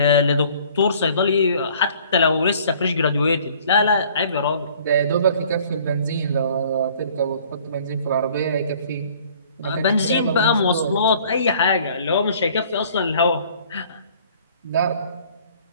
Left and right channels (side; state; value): both; inverted; correlation -0.54